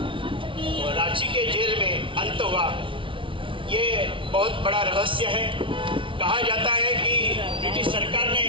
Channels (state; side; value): late; left; 0.25 ms